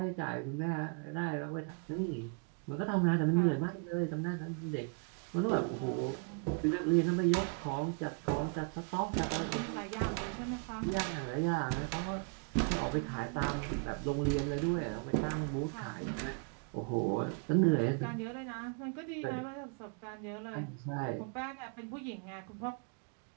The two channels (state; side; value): quieter; left; 37.7 dB